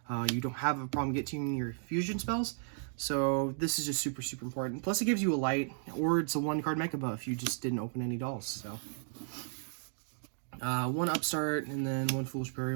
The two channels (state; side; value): silent; left; digital silence